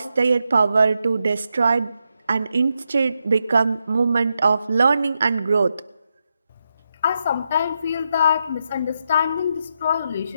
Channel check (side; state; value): both; inverted; correlation -0.84